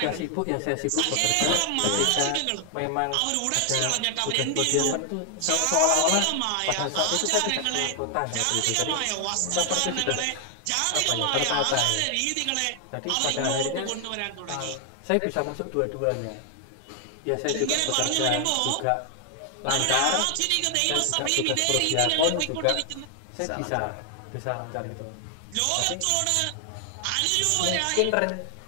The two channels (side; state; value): both; different; correlation 0.00